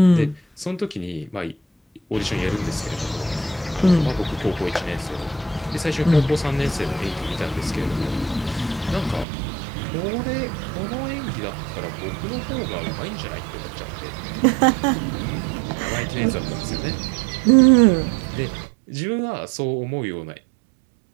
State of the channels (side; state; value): left; drops out; at 9.2 s